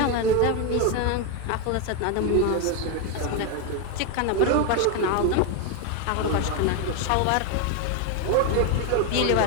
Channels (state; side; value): different; both; correlation 0.02